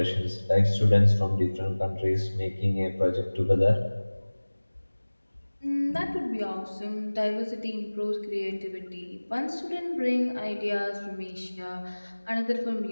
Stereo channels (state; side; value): inverted; both; correlation -1.00